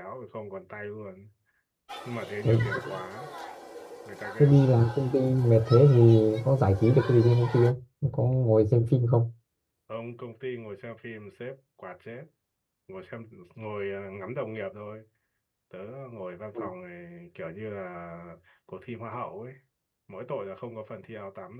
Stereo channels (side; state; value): both; identical; correlation 1.00